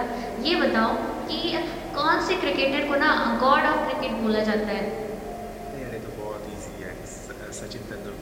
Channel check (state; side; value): identical; both; correlation 1.00